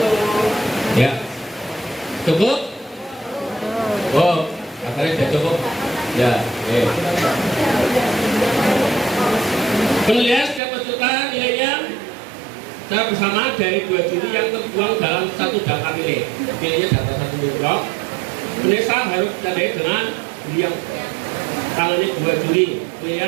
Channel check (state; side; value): drops out; left; at 10.6 s